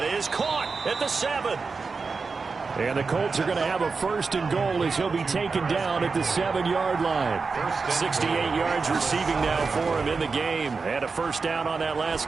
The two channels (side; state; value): left; quieter; 4.6 dB